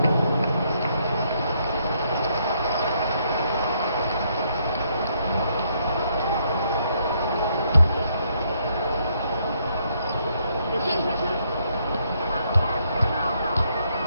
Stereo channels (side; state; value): both; inverted; correlation -0.72